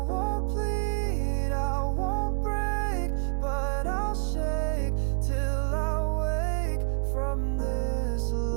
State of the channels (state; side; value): silent; left; 59 dB below the other